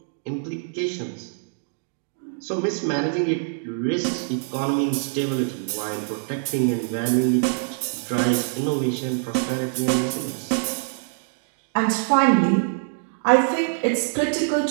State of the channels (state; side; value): silent; left; digital silence